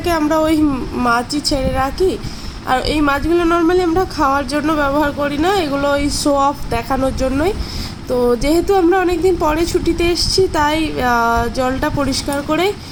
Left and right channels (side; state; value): both; identical; correlation 1.00